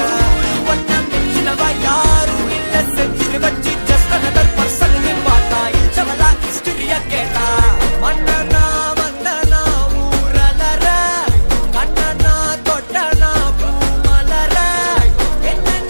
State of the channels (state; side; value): inverted; both; correlation -1.00